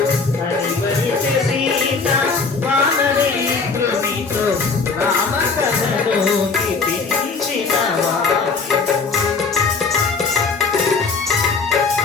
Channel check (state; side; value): quieter; right; 4.6 dB